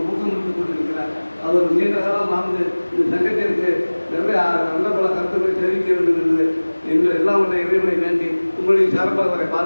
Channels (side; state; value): both; inverted; correlation -1.00